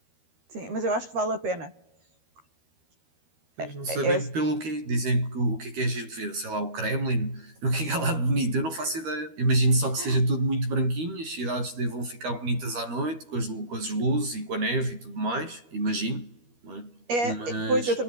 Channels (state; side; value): late; left; 13 ms